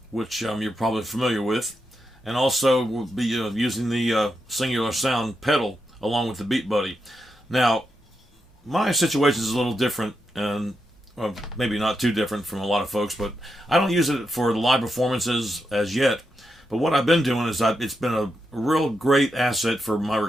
which you're probably familiar with, and also we'll be using the Singular Sound pedal along with the Beat Buddy. Now, my situation is a little different, and maybe not too different from a lot of folks, but I don't use it for the live performances as yet. But what I've been doing is it's been a real great asset for my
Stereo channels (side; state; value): both; normal; correlation 0.85